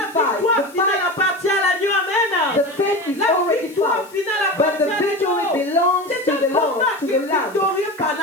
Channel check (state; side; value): noise; left; hiss, 24 dB below the sound